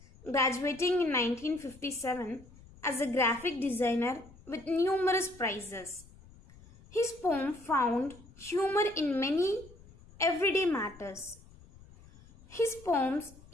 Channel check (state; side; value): noise; left; rumble, 23 dB below the sound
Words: graduating in 1957 as a graphic designer with numerous prizes. His poem found humor in many everyday matters. His poems